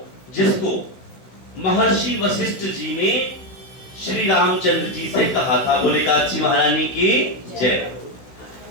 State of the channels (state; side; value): late; right; 16 ms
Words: जिसको महर्षि वशिष्ठ जी ने श्री रामचंद्र जी से कहा था। बोले एकादशी महारानी की जय।